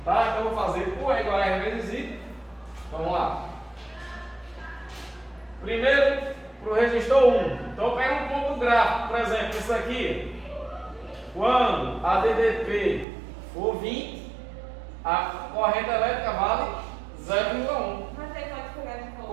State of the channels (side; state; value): left; drops out; at 13.1 s